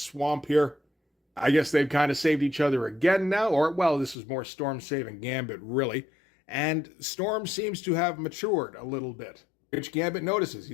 here. I guess they've kind of saved each other again now, or, well, this is more Storm saving Gambit, really. And Storm seems to have matured a little bit, which Gambit notices. He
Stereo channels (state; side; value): drops out; right; at 4.2 s